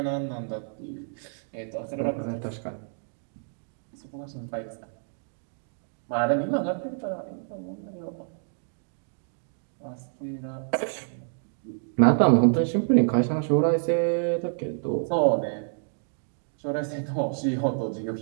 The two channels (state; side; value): silent; left; digital silence